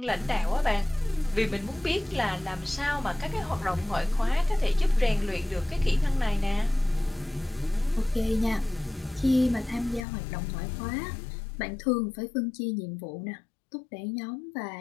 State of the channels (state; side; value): drops out; right; at 10.1 s